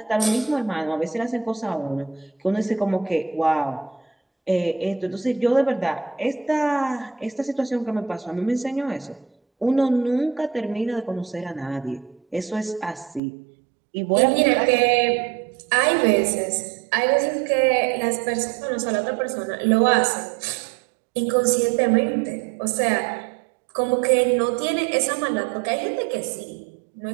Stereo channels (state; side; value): drops out; left; at 13.2 s